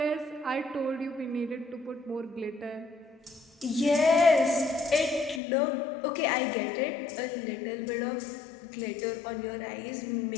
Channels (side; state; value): right; drops out; at 5.4 s